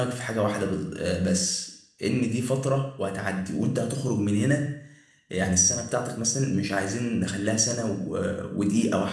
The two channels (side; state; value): both; identical; correlation 1.00